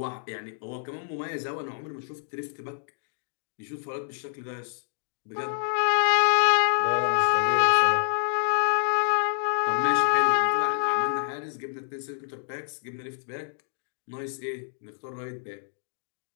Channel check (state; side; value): silent; right; digital silence